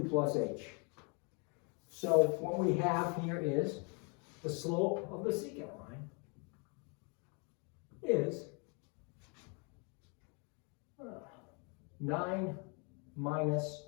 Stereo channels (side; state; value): right; quieter; 34.8 dB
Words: plus h. So what we have here is the slope of the secant line is 9 minus